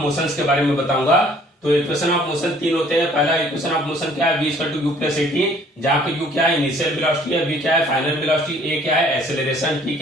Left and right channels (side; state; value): both; normal; correlation 0.57